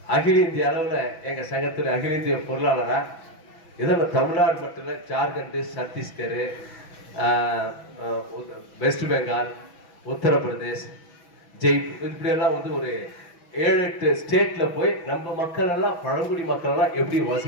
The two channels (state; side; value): late; right; 6.1 ms